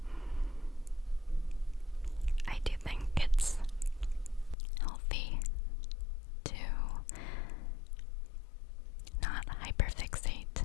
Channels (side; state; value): right; drops out; at 4.5 s